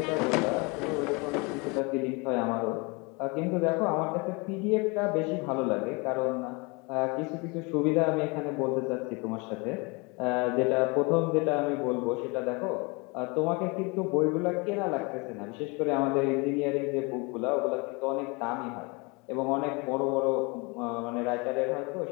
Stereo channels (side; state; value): right; quieter; 28.7 dB